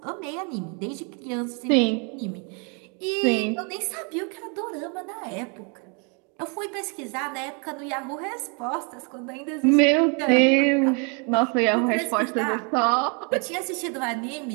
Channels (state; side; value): quieter; left; 35.6 dB